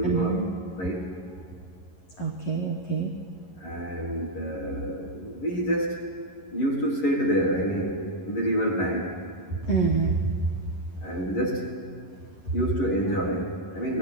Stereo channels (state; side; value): late; right; 11 ms